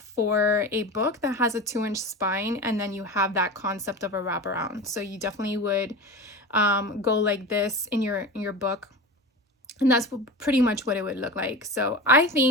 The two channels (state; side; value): normal; both; correlation 0.29